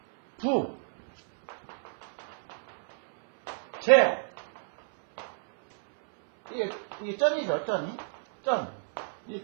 부, 제, 이게 점이죠, 점이. 점.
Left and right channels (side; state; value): left; silent; 58 dB below the other